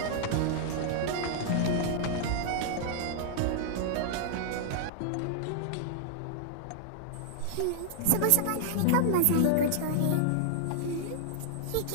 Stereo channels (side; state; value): both; different; correlation -0.01